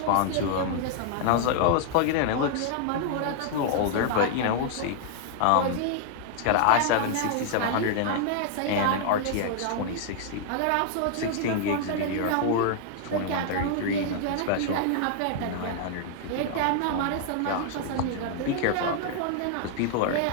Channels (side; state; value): both; different; correlation 0.00